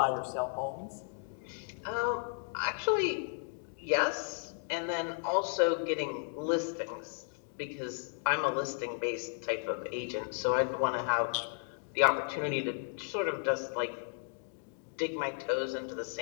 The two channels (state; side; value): silent; right; 55 dB below the other